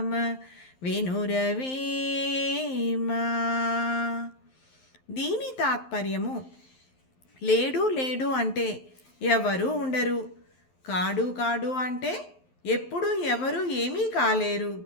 వినురవేమా. దీని తాత్పర్యము, లేడు లేడు అంటే ఎవరు ఉండరు, కాడు కాడు అంటే ఎప్పుడు ఎవరు ఏమీ కాలేరు,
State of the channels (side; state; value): right; late; 11 ms